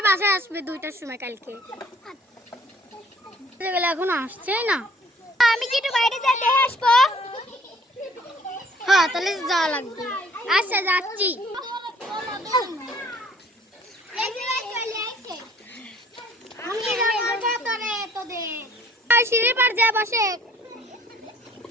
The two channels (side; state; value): both; normal; correlation 0.57